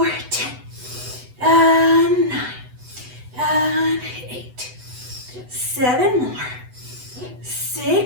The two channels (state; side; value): late; left; 8.0 ms